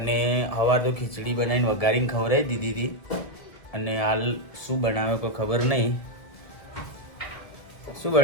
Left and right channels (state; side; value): late; right; 1.5 ms